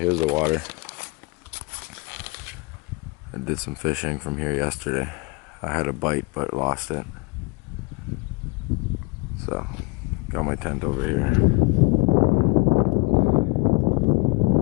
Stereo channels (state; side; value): quieter; right; 26.0 dB